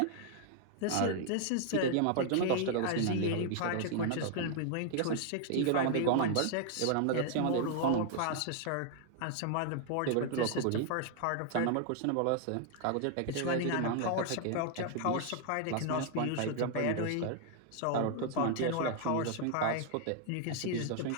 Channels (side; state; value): both; different; correlation 0.00